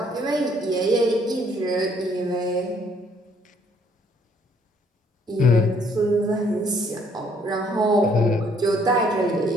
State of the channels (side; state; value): both; normal; correlation 0.65